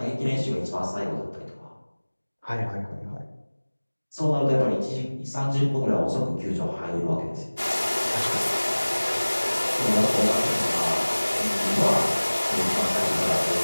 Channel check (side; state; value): both; inverted; correlation -1.00